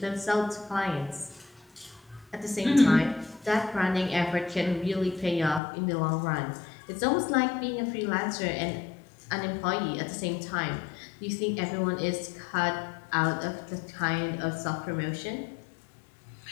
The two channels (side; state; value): right; drops out; at 5.6 s